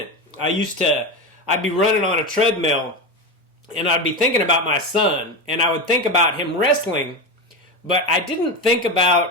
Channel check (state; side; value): normal; both; correlation 0.18